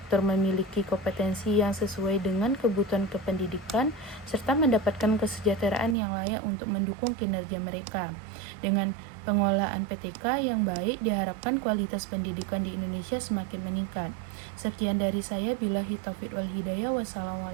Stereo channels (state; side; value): drops out; left; at 6.0 s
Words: memiliki kompetensi yang sesuai dengan kebutuhan kependidikan serta mendapatkan kesejahteraan yang layak untuk mendukung kinerja mereka. Dengan pengelolaan PTK yang baik, diharapkan kualitas pendidikan di Indonesia semakin meningkat. Sekian dari saya, billahi taufiq wal hidayah.